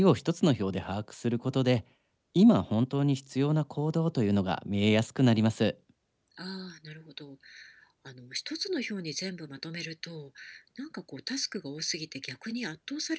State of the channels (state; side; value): identical; both; correlation 1.00